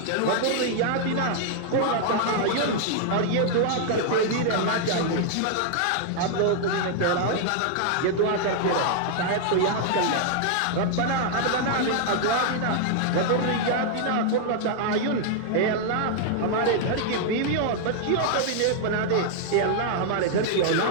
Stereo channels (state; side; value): different; both; correlation -0.01